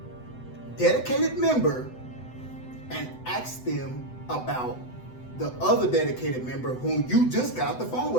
dedicated member and asked them about the other dedicated member whom you just got off the phone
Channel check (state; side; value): late; right; 8.0 ms